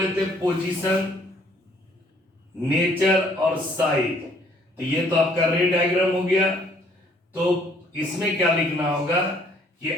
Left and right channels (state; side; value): normal; both; correlation 0.62